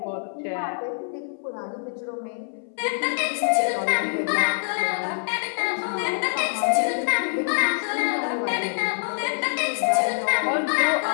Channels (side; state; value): right; silent; 62 dB below the other